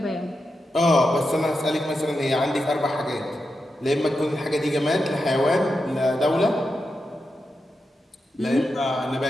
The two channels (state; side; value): normal; both; correlation 0.88